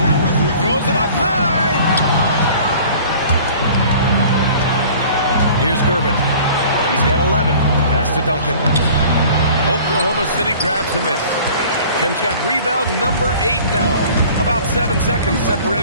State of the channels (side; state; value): both; inverted; correlation -0.47